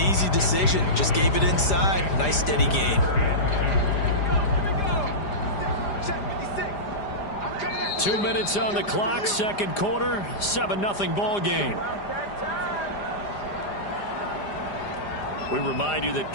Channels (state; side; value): late; right; 5.0 ms